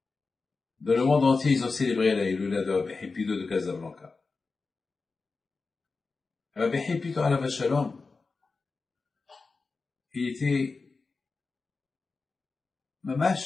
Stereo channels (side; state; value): right; quieter; 4.2 dB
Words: dans le monde entier, ils ont célébré la Iloula de Rabbi Haïm Pito de Casablanca. Rabbi Haïm Pito alav Shalom, il était,